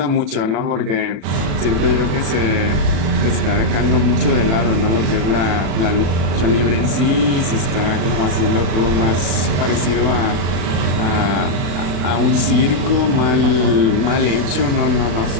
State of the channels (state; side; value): late; left; 36 ms